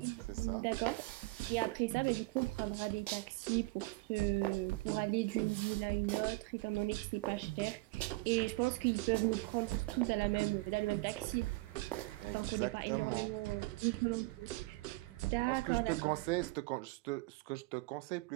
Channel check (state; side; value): quieter; left; 22.4 dB